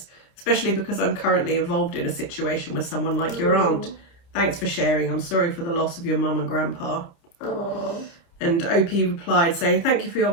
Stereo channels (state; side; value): late; right; 29 ms